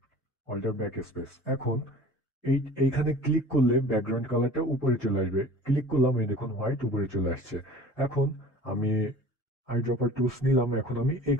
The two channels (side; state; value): both; normal; correlation 0.43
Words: alter back space. এখন এইখানে ক্লিক করলে ব্যাকগ্রাউন্ড কালারটা উপরে চলে আসবে। ক্লিক করলাম, এই দেখুন হোয়াইট উপরে চলে আসছে। এখন আমি আই ড্রপার টুলস নিলাম, এখন আমি এই